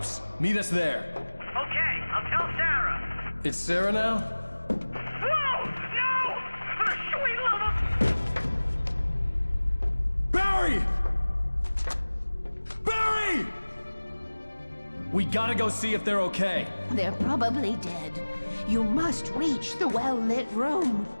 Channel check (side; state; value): both; inverted; correlation -1.00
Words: Meet us there. Okay, I'll tell Sarah. It's Sarah now? Whoa! No! For the sweet love of... Barry! Barry! We gotta go see if they're okay. They're probably dead. You must reach the well-lit room.